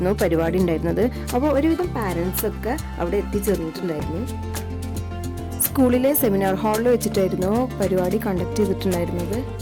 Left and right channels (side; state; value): both; identical; correlation 1.00